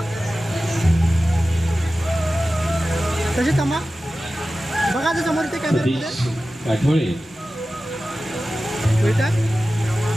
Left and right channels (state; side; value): normal; both; correlation 0.95